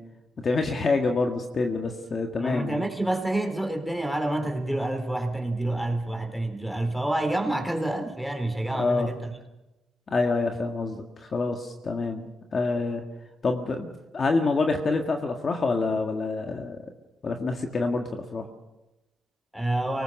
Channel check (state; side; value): normal; both; correlation 0.89